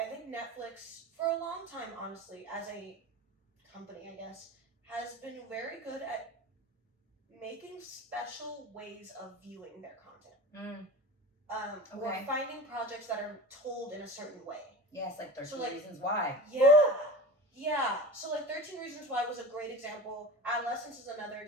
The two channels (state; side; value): normal; both; correlation 0.31